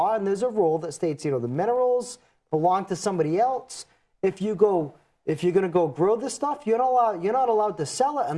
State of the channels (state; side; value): identical; both; correlation 1.00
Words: and there's a rule that states, you know, the minerals belong to somebody else. If you're going to go grow this stuff, you're not allowed to sell it